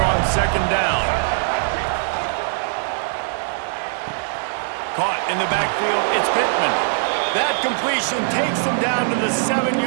on 2nd down. Caught in the backfield, it's Pittman. That completion takes them down to the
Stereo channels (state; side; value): silent; left; digital silence